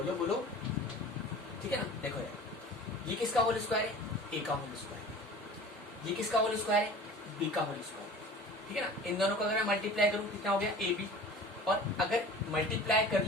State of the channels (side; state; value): both; normal; correlation 0.41